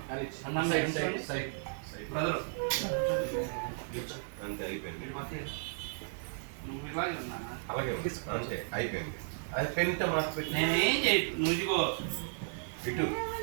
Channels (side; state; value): left; silent; digital silence